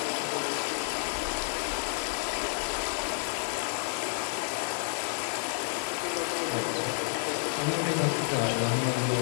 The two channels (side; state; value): right; silent; digital silence